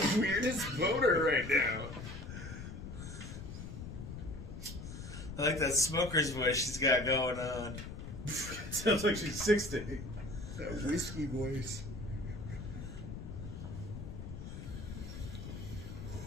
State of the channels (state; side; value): noise; left; rumble, 9 dB below the sound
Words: weirdest boner right now. I like that smoker's voice she's got going on. Sounds like she's 60. That whiskey voice.